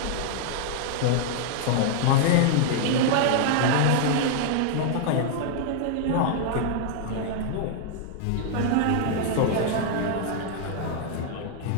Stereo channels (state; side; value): different; both; correlation -0.01